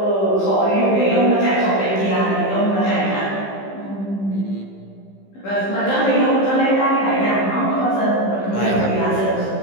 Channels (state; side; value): late; right; 15 ms